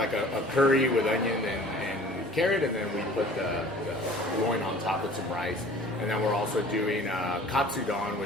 a curry with onion and carrot, and then we put the loin on top with some rice. And then we're also doing katsudon,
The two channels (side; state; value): both; normal; correlation 0.48